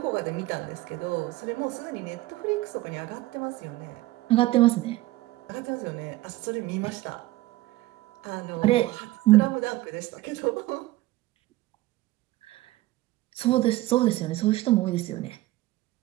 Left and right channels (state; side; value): quieter; left; 17.9 dB